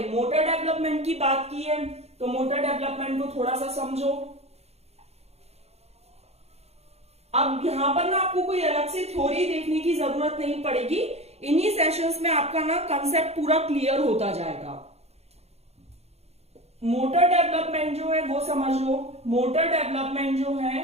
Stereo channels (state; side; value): late; left; 0.31 ms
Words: मोटर डेवलपमेंट की बात की है, तो मोटर डेवलपमेंट को थोड़ा सा समझो। अब यहां पर ना आपको कोई अलग से थ्योरी देखने की जरूरत नहीं पड़ेगी, इन्हीं सेशंस में आपका ना कंसेप्ट पूरा क्लियर होता जाएगा। मोटर डेवलपमेंट जो है वो समझ लो। मोटर डेवलपमेंट जो